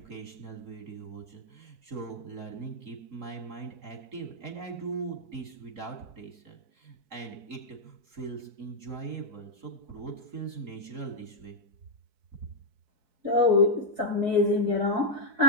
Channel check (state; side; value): late; left; 4.7 ms